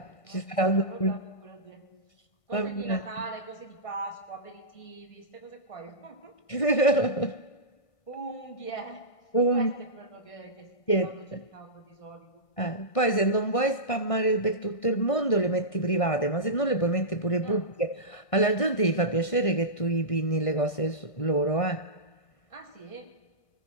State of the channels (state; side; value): late; right; 1.6 ms